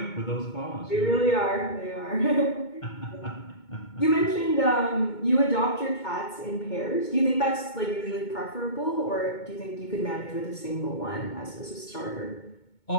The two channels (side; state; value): right; late; 2.2 ms